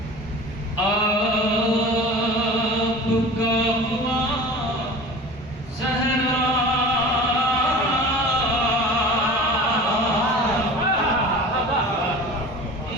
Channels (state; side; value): normal; both; correlation 0.38